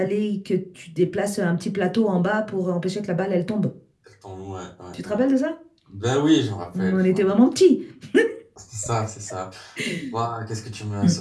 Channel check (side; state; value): both; identical; correlation 1.00